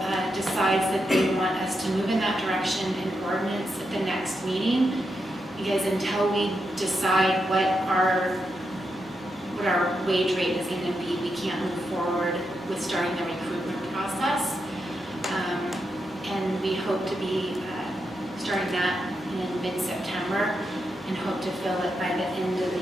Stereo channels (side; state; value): both; normal; correlation 0.85